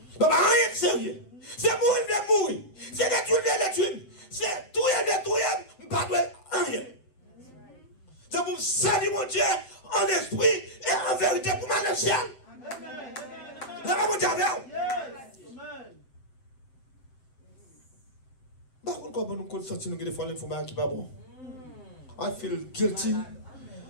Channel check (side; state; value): right; late; 7.8 ms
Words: pouvons pas rien sérieux. C'est mourir de mourir. C'est détruire de détruire. C'est tout et détruire. Nous ne pouvons pas rien. C'est pour saluer mon Dieu en esprit et en vérité pour ma le ciel. Là, mon Dieu, par contre, comment nous sentir que des fois l'information qui n'est pas bon? I feel guilty.